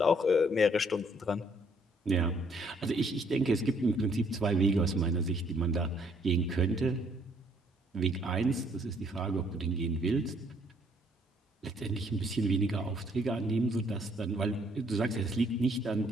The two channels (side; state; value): both; normal; correlation 0.65